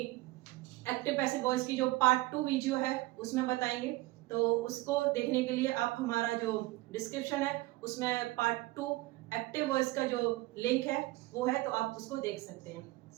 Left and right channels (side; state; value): left; quieter; 19.9 dB